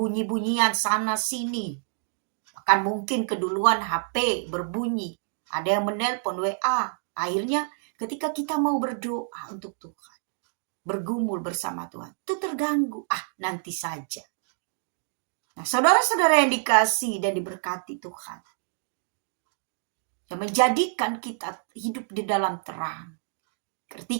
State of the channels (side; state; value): left; silent; digital silence